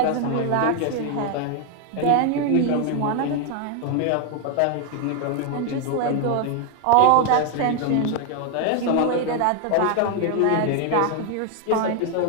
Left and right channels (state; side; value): different; both; correlation 0.01